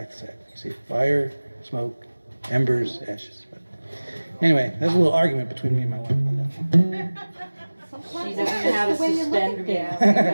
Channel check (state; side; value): inverted; both; correlation -1.00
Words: said. You see, fire, smoke, embers, ashes. But anyway, there's a little argument between me and my wife about that. She doesn't know how to suspend gas.